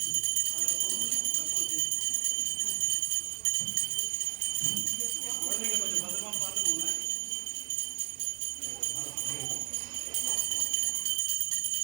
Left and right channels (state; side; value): quieter; left; 29.4 dB